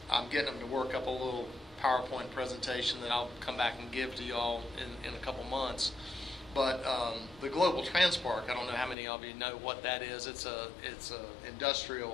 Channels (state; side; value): drops out; right; at 9.0 s